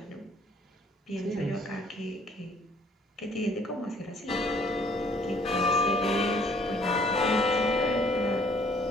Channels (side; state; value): both; normal; correlation 0.60